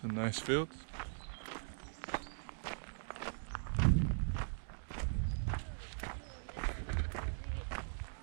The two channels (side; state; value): left; silent; digital silence